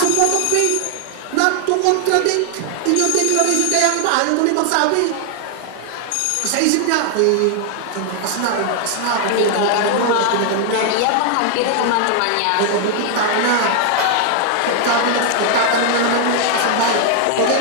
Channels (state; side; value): different; both; correlation 0.00